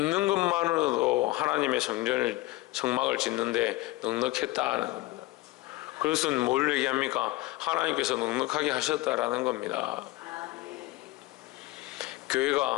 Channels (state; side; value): quieter; right; 19.1 dB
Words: 것만으로도 하나님의 성막을 짓는데 넉넉했다는 겁니다. 그것은 뭘 얘기합니까? 하나님께서 넉넉하게 하셨다라는 겁니다.